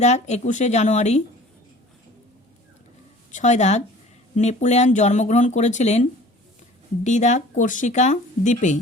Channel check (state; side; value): normal; both; correlation 0.46